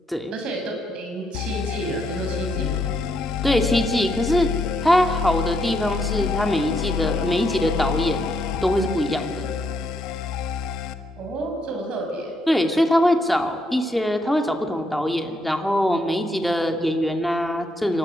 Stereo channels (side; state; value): both; normal; correlation 0.76